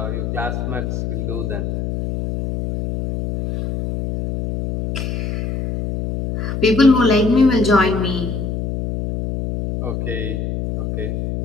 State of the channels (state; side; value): noise; left; hum, 3 dB below the sound